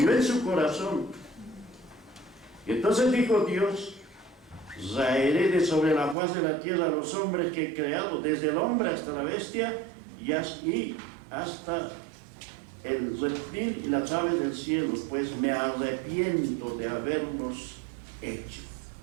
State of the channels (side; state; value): left; drops out; at 6.2 s